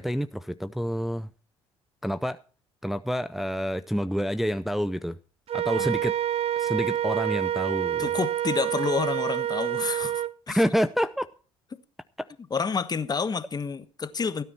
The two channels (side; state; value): both; normal; correlation 0.59